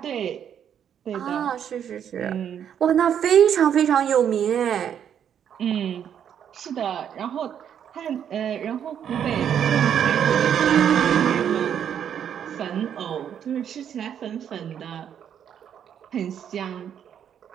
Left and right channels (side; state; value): left; quieter; 8.9 dB